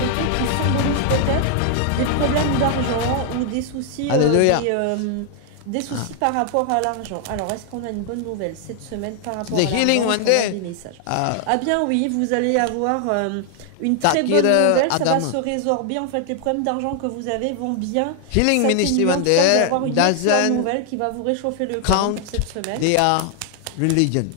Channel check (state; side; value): different; both; correlation 0.00